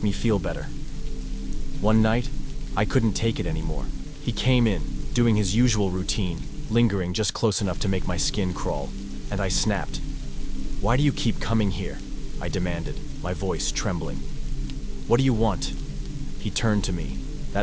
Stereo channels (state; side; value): identical; both; correlation 1.00